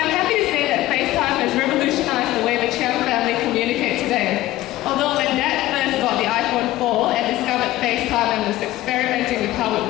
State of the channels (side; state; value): right; quieter; 16.2 dB